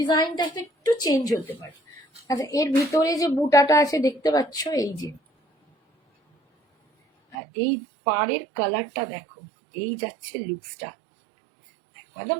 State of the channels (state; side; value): drops out; left; at 7.4 s